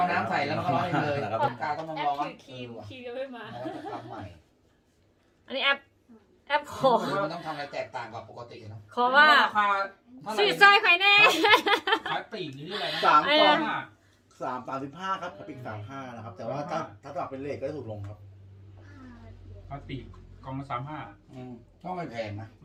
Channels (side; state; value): both; identical; correlation 1.00